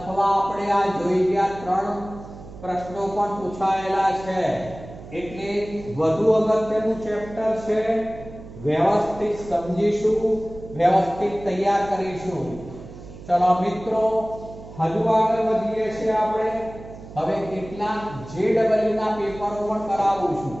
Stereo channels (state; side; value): noise; right; hum, 15 dB below the sound